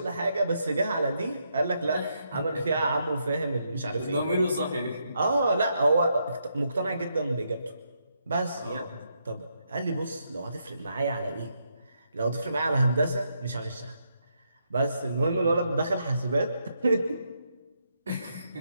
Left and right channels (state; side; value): inverted; both; correlation -0.79